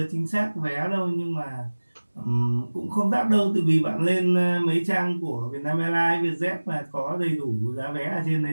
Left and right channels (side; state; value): both; inverted; correlation -1.00